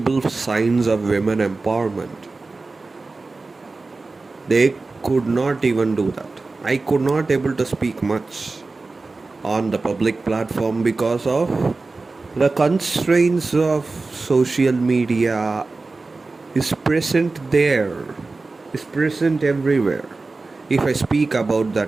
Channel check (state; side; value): quieter; left; 3.6 dB